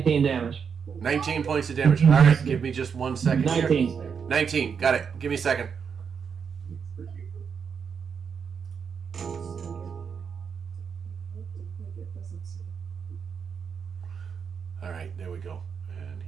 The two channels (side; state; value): left; quieter; 6.5 dB